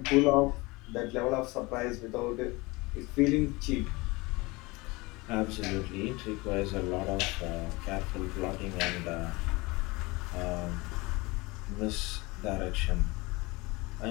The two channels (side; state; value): right; quieter; 23.7 dB